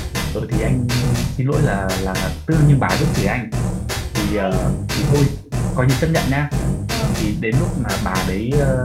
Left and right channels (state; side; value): identical; both; correlation 1.00